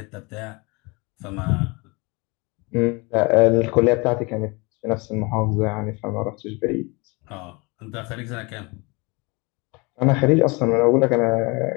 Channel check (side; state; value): right; quieter; 27.6 dB